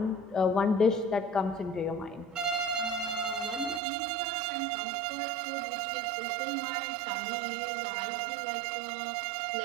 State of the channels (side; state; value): left; drops out; at 3.8 s